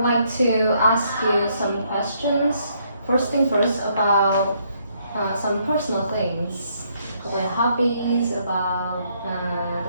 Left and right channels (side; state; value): both; inverted; correlation -0.71